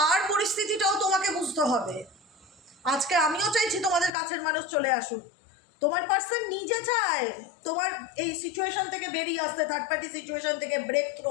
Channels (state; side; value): drops out; right; at 4.1 s